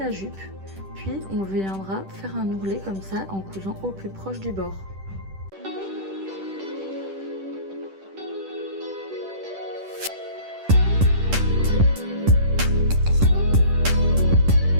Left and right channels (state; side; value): late; left; 10 ms